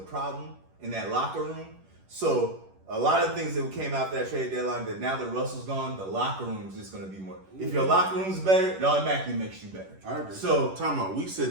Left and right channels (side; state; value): left; late; 11 ms